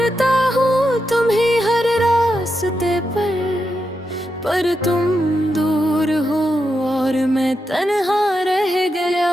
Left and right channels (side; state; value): both; normal; correlation 0.86